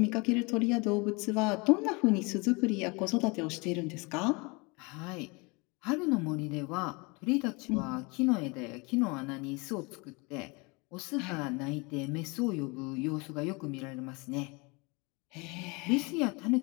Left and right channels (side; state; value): right; quieter; 28.1 dB